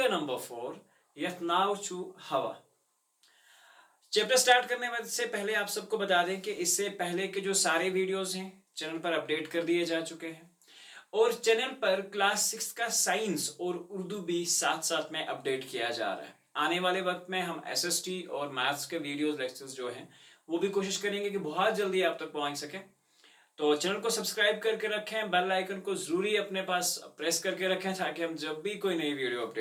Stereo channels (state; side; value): identical; both; correlation 1.00